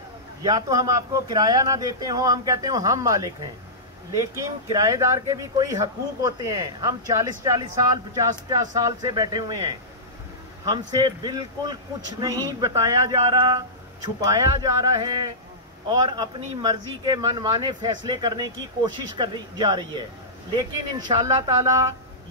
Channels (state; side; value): normal; both; correlation -0.16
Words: या तो हम आपको किराया ना देते हो, हम कहते हो हम मालिक हैं, लेकिन किराएदार के भी कोई हकूक होते हैं। हम 40-40 साल 50-50 साल से बैठे हुए हैं, हमसे बिल्कुल कुछ नहीं बताया जा रहा, छुपाया जा रहा है और अपनी मर्जी के मनमाने फैसले करने की कोशिश कर जा रही है। लेकिन इंशाअल्लाह ताला